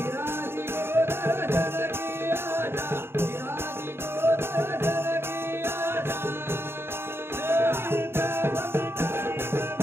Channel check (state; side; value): late; left; 0.11 ms